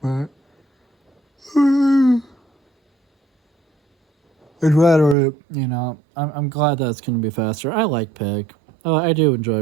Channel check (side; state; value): left; drops out; at 5.2 s